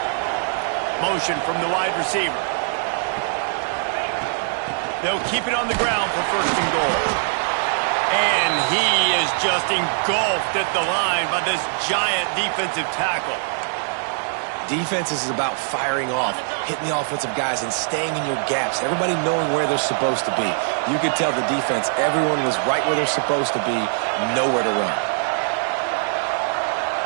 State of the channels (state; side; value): silent; left; digital silence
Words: Motion from the wide receiver. They'll keep it on the ground for 1st and goal. And he is just engulfed at the line by this giant defensive tackle. Defense is about firing off, hitting the offensive guys and staying in your gaps. Everybody knowing where they're supposed to be. You could tell the defense, everyone was right where they're supposed to be, nowhere to run.